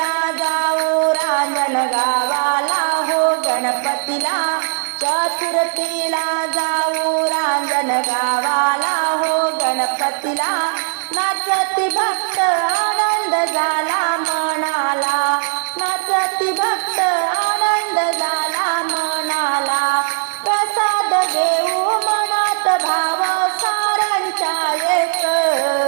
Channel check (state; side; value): silent; left; digital silence